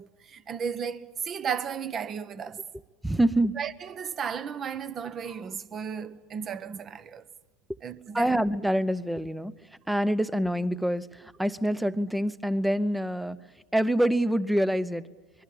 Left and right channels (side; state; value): both; normal; correlation 0.91